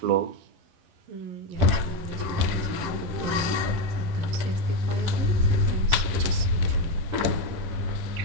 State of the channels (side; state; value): left; late; 10 ms